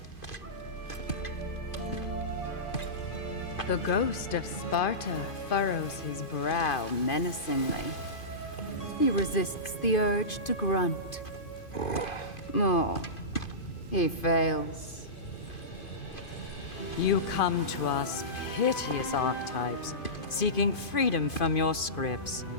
The ghost of Sparta furrows his brow menacingly. He resists the urge to grunt. Oh, he fails. You come to us, piteous archetypes, seeking freedom from your scripts,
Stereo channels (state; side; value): late; right; 2.5 ms